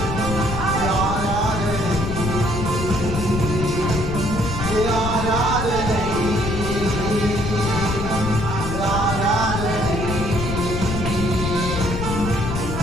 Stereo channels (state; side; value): noise; left; rumble, 3 dB below the sound